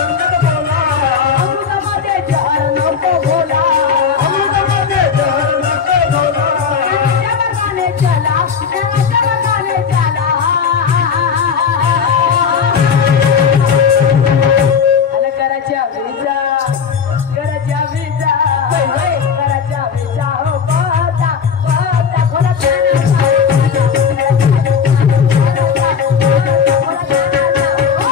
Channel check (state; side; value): quieter; right; 6.6 dB